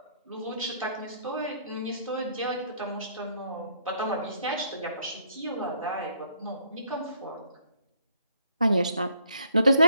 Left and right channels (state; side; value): inverted; both; correlation -0.66